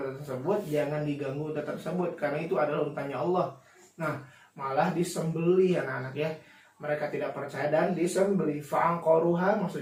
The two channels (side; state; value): both; identical; correlation 1.00